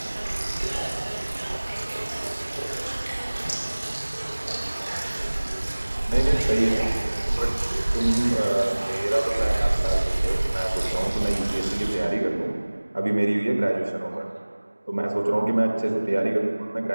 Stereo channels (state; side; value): inverted; both; correlation -1.00